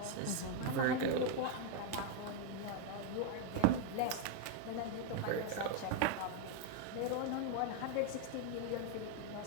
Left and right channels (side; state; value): both; different; correlation 0.00